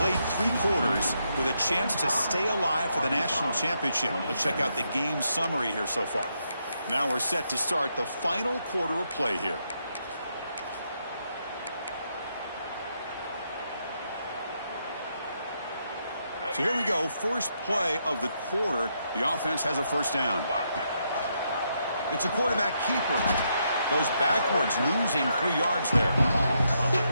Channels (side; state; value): both; inverted; correlation -0.79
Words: 3 quarters with a chance to stay alive for the national championship. Let's check out the game summary here so far. Now we're set to start the final quarter of play here. So here we go. First play of the quarter. The offense has a first down. It's a quarterback keeper. Goes backwards, losing 3 yards there.